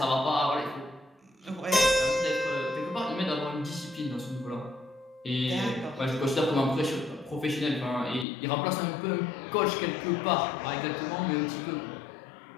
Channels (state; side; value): drops out; right; at 8.2 s